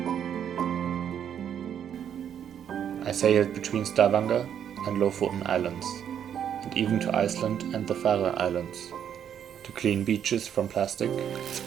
I sailed between Stavanger and Lofoten Islands, and even to Iceland and the Faroe Islands, to clean beaches from plastic and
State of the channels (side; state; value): left; quieter; 9.0 dB